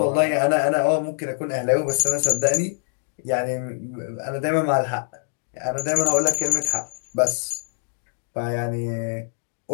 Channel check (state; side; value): silent; right; digital silence